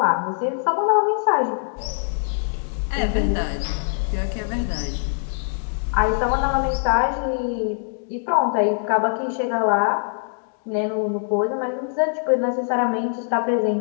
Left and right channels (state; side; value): silent; right; digital silence